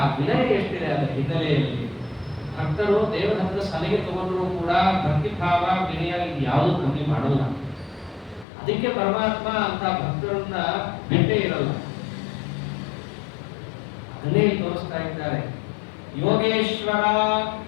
ವಿನಯ ಎಷ್ಟಿದೆ ಅದರ ಹಿನ್ನೆಲೆಯಲ್ಲಿ. ಭಕ್ತರು ದೇವಧರ್ಮದ ಸಲಹೆ ತಗೊಂಡ್ರು ಕೂಡ ಭಕ್ತಿಭಾವ ವಿನಯ ಇದು ಯಾವುದು ಕಮ್ಮಿ ಮಾಡಲ್ಲ. ಅದಕ್ಕೆ ಪರಮಾತ್ಮ ಅಂತ ಭಕ್ತರನ್ನ ಬಿಟ್ಟೇ ಇರಲ್ಲ. ಅದನ್ನೇ ತೋರಿಸ್ತಾ ಇದ್ದಾರೆ. ಯೋಗೇಶ್ವರ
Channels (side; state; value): right; drops out; at 8.5 s